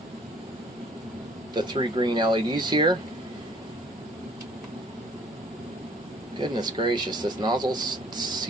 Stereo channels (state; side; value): normal; both; correlation 0.56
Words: the 3 green LEDs here. Goodness gracious, this nozzle's